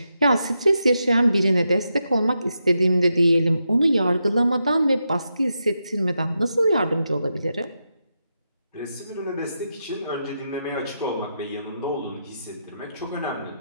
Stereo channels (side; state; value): both; inverted; correlation -0.86